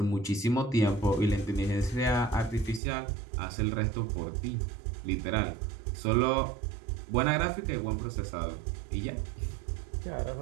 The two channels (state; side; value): drops out; left; at 2.8 s